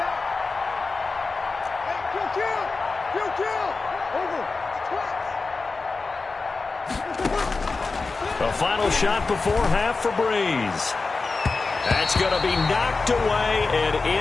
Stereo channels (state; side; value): quieter; right; 4.0 dB